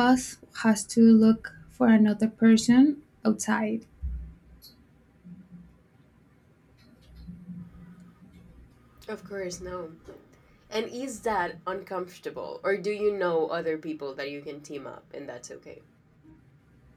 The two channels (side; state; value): both; identical; correlation 1.00